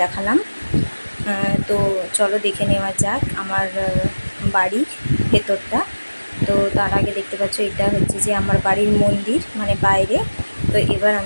দেখালাম। তো চলো দেখে নেওয়া যাক আমার বাড়ির ভেতরটা। তো তার আগে দেখতে পাচ্ছ, এটা হচ্ছে যে আমার বাড়ির মন্দির, মানে বাইরে। তো এবার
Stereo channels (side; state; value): both; inverted; correlation -1.00